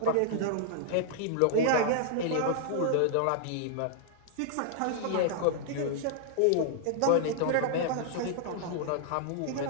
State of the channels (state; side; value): different; both; correlation -0.01